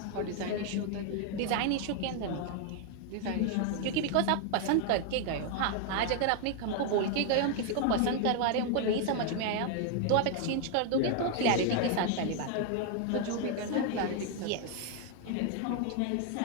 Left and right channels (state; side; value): different; both; correlation 0.00